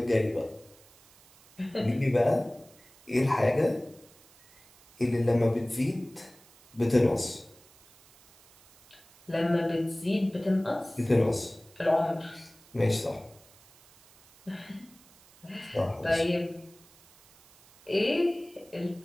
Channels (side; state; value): right; noise; hiss, 27 dB below the sound